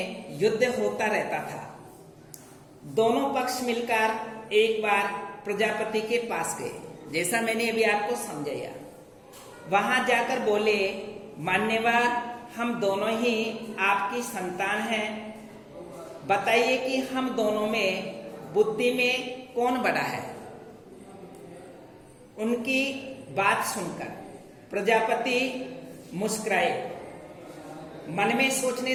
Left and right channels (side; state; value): both; identical; correlation 1.00